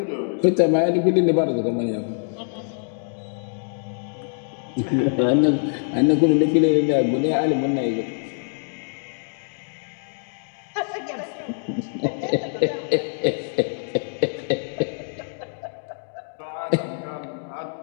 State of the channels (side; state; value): right; silent; digital silence